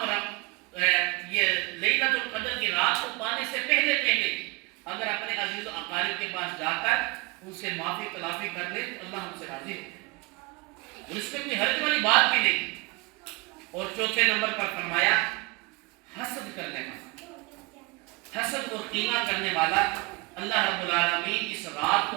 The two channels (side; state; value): left; quieter; 26.0 dB